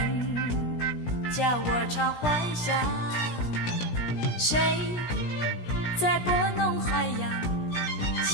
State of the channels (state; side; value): late; right; 17 ms